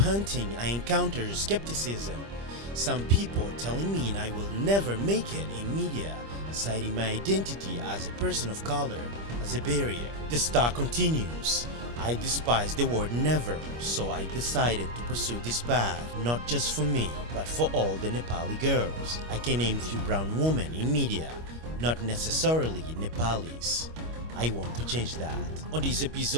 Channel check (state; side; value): late; left; 25 ms